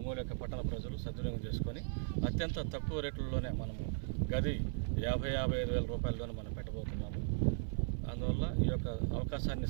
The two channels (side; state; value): left; silent; 53 dB below the other